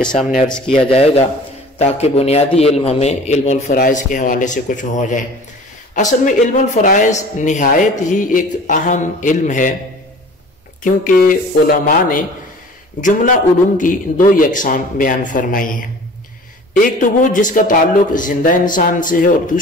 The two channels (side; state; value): both; normal; correlation 0.44